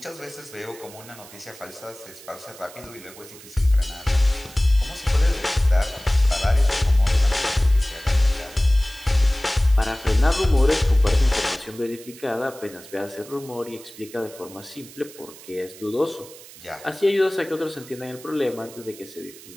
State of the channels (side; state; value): right; noise; hiss, 19 dB below the sound